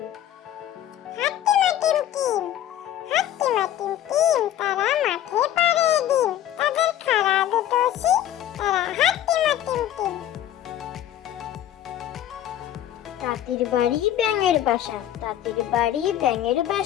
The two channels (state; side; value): quieter; right; 11.8 dB